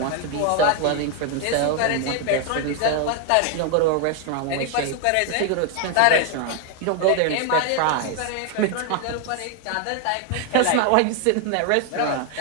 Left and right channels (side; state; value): both; different; correlation 0.01